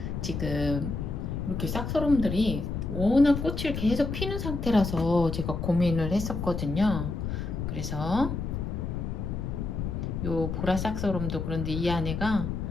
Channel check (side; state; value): left; noise; rumble, 3 dB below the sound